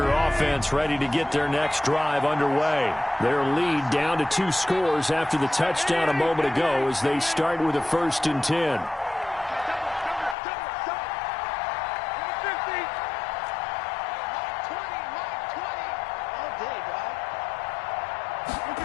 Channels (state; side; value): drops out; right; at 10.4 s